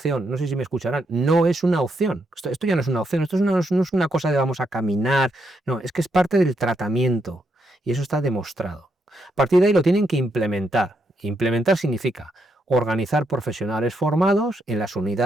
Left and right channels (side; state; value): both; normal; correlation 0.79